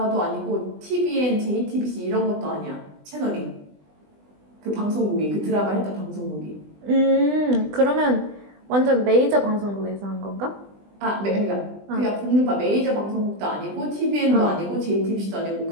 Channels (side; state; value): left; late; 20 ms